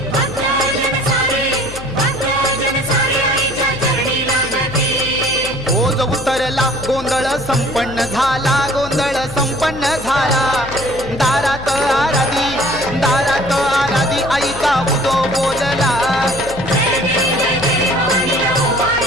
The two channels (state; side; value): noise; left; hum, 14 dB below the sound